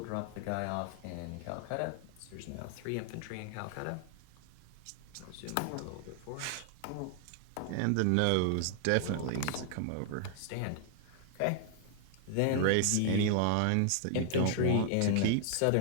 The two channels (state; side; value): different; both; correlation 0.00